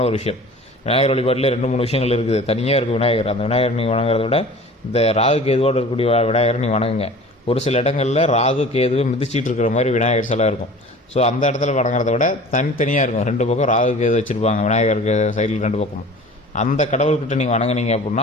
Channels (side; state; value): both; normal; correlation 0.42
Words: ஒரு விஷயம். விநாயகர் வழிபாட்டில் 2-3 விஷயங்கள் இருக்குது. தனியாக இருக்குது விநாயகர். அந்த விநாயகர் நீங்கள் வணங்குறத விட இந்த ராகு கேதுவோடு இருக்கக்கூடிய விநாயகரை நீங்கள் வணங்குங்க. ஒரு சில இடங்களில் ராகு கேதுவை மிதிச்சிட்டு இருக்கிற மாதிரி விநாயகர் சிலை இருக்கும். ஸோ அந்த இடத்துல வணங்குறத விட தனித்தனியாக இருக்கும். 2 பக்கம் ராகு கேது வச்சுருப்பாங்க விநாயகருக்கு சைடில் 2 பக்கமும். அந்த கடவுள்கிட்ட நீங்கள் வணங்குனீங்க